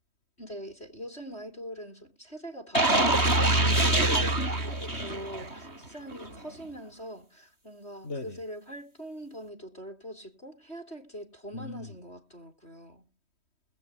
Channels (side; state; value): right; late; 3.1 ms